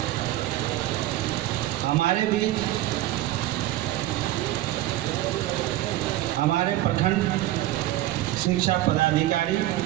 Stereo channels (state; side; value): quieter; left; 15.1 dB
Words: हमारे बीच हमारे प्रखंड शिक्षा पदाधिकारी